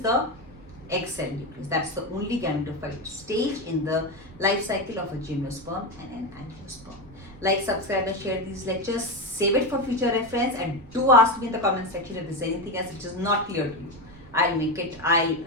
egg cell nucleus. That's the only gametophyte stage in the life cycle of a gymnosperm and an angiosperm. Like, subscribe and share these lectures. Save it for future reference, and do ask me in the comment section if there's anything else which is not clear to you. I'll repeat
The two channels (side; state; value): right; noise; rumble, 21 dB below the sound